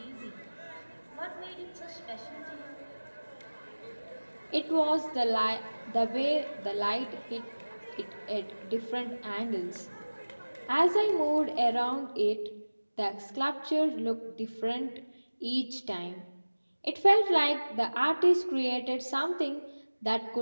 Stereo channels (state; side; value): inverted; both; correlation -1.00